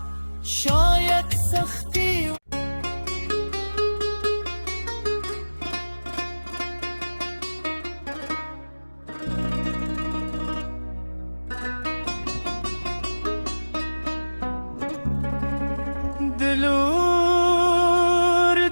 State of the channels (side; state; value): both; inverted; correlation -1.00